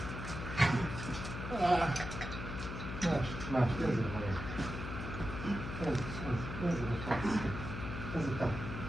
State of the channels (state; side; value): noise; left; hum, 6 dB below the sound